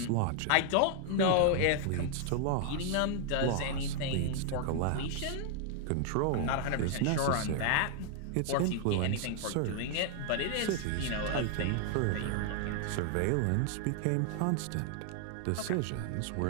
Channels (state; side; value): different; both; correlation 0.00